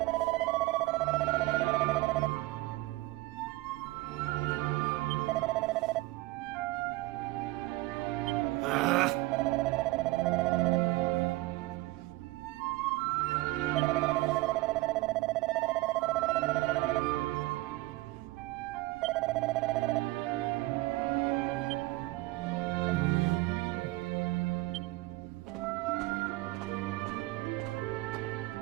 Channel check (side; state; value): left; quieter; 19.6 dB